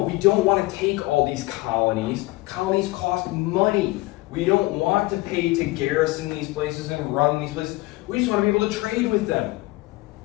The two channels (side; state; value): right; quieter; 20.8 dB